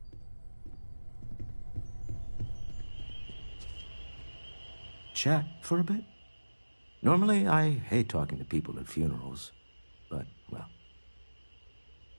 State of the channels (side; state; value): both; inverted; correlation -1.00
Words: Chat for a bit? Normally, I hate talking to people at funerals, but, well.